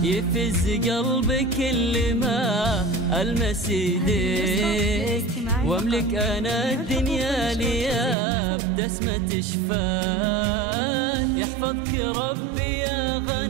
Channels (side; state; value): left; drops out; at 8.2 s